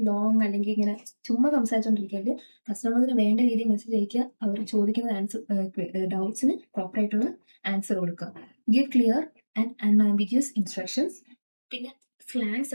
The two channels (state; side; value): inverted; both; correlation -1.00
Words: Long അല്ലെങ്കിൽ ഇങ്ങനെ ചുമ്മാ സംസാരിച്ചുകൊണ്ടിരിക്കരുത്. കസ്റ്റമേഴ്സിന് വേണ്ട രീതിയിൽ മെസ്സേജ് അയക്കുക. അവർ ചോദിക്കുന്ന ഡൗട്ട്സിന് പ്രോപ്പറായിട്ടുള്ള ആൻസർ കൊടുക്കുക. Give clear and unambiguous instructions. പിന്നെ സ്ലാങ്സ്